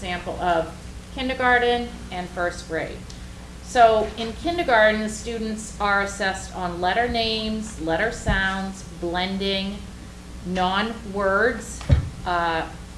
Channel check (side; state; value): both; identical; correlation 1.00